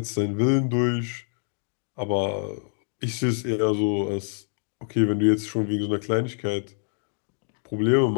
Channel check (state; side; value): silent; right; digital silence